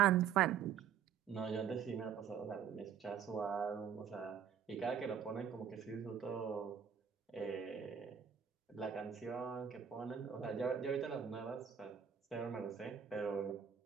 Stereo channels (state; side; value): quieter; left; 8.0 dB